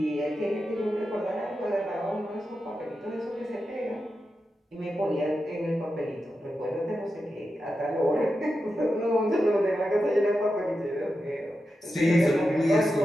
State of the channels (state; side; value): normal; both; correlation 0.89